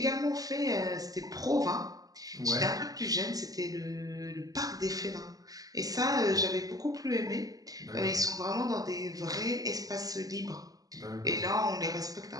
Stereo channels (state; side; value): late; left; 0.17 ms